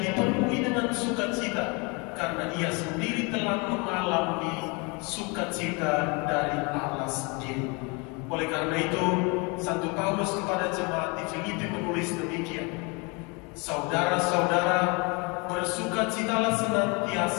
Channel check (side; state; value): right; quieter; 30.0 dB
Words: dipenuhi dengan sukacita karena ia sendiri telah mengalami sukacita dari Allah sendiri. Oleh karena itu, Santo Paulus kepada jemaat di Filipi menulis demikian: saudara-saudara, bersukacitalah